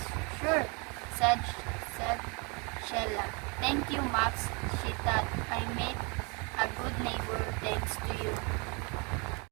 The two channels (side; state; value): left; quieter; 31.6 dB